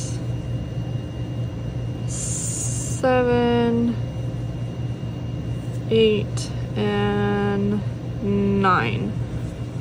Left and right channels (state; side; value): identical; both; correlation 1.00